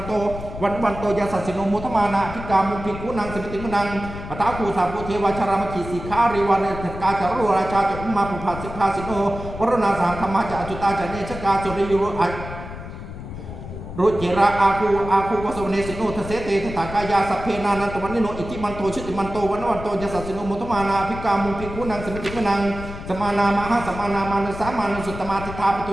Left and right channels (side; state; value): left; noise; rumble, 10 dB below the sound